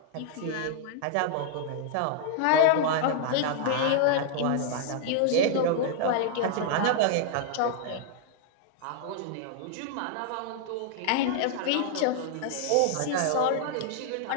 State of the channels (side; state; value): both; different; correlation 0.00